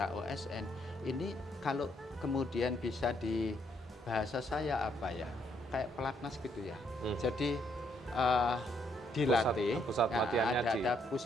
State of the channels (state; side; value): normal; both; correlation 0.72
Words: OSN. Ini kalau kemudian bisa di bahasa saya apa ya, kayak pelatnas gitu ya. Jadi dilatih, pusat latihannya ada